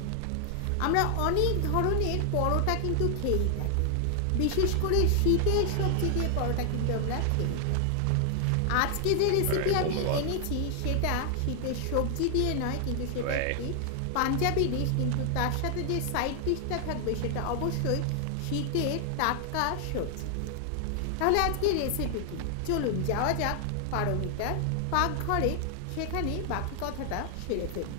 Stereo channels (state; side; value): different; both; correlation 0.00